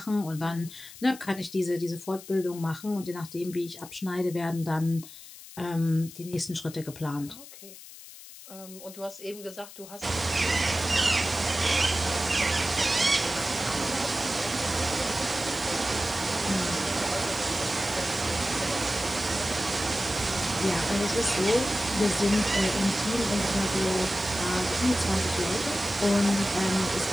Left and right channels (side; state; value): left; noise; hiss, 16 dB below the sound